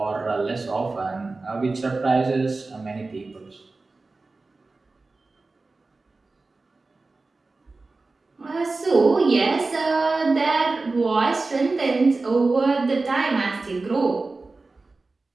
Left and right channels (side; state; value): left; quieter; 3.6 dB